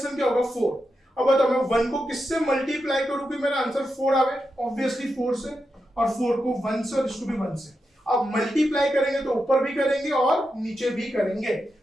क्या होगा 4। अब बताओ मैं 1 को किससे मल्टीप्लाई करूं कि मेरा आंसर 4 आवे, ऑब्वियसली 4 से, और 4 को 1 से और इसको भी 1 से। अब मल्टीप्लाई करेंगे तो ऊपर भी करेंगे और नीचे भी करेंगे,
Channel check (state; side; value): normal; both; correlation 0.87